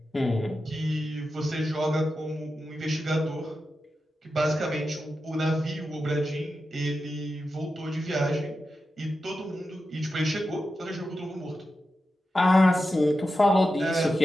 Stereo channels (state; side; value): normal; both; correlation 0.91